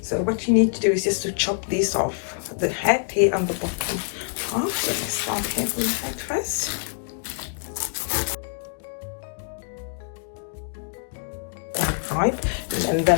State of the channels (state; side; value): silent; right; digital silence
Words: what you need to do is just to chop these off, the head here and the bottom half. So let's start here from the head first. Right, and